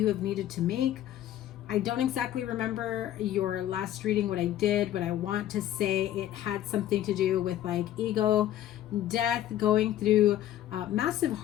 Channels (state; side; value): quieter; right; 12.4 dB